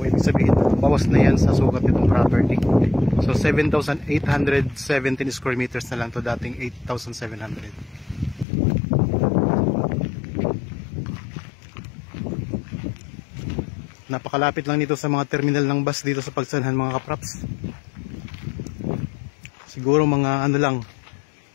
ibig sabihin bawas na yan sa sukat nitong property. So 7,817 square meters na lang to, dating 8,700. Napakalapit lang nito sa mga terminal ng bus dito sa Pagsanan mga kapraps. Siguro mga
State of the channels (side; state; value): right; drops out; at 8.5 s